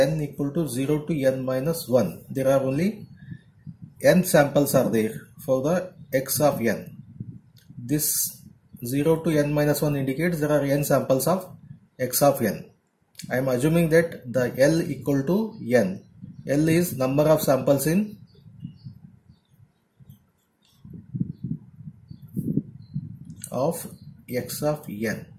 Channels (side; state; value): both; identical; correlation 1.00